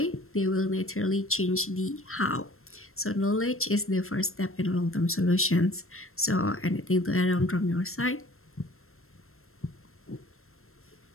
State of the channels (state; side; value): late; right; 0.62 ms